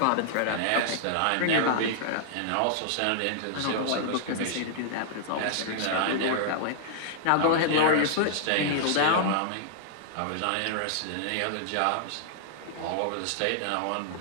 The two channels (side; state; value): both; different; correlation -0.01